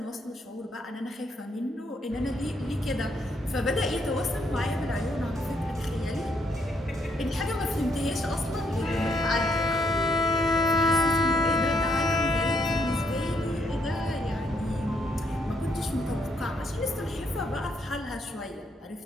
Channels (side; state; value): both; normal; correlation 0.73